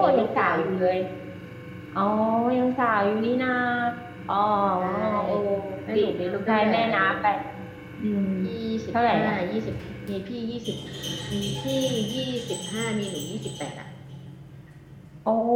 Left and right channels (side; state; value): both; identical; correlation 1.00